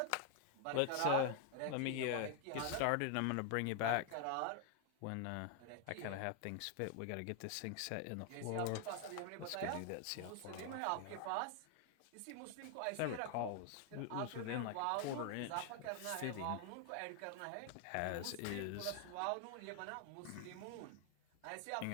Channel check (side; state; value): both; different; correlation 0.00